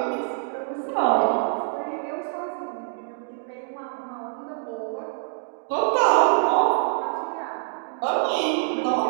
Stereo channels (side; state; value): left; silent; digital silence